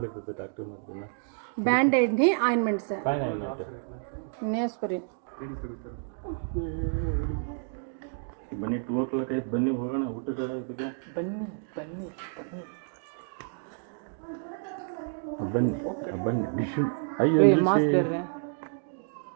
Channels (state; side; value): silent; left; 58 dB below the other